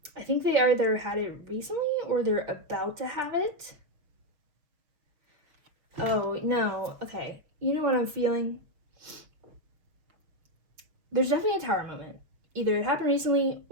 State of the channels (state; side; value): late; left; 6.5 ms